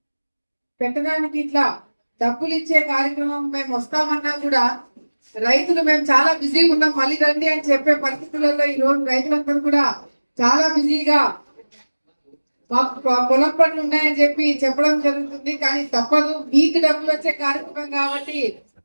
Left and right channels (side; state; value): both; inverted; correlation -1.00